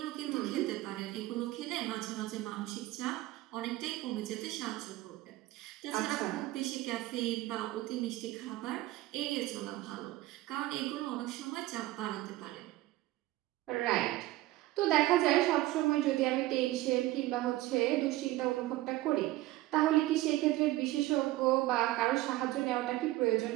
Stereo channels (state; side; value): quieter; left; 17.3 dB